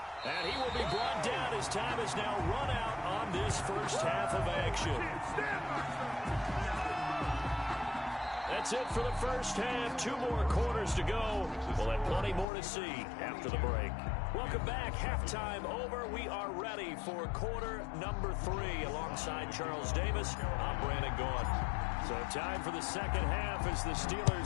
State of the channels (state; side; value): drops out; right; at 12.5 s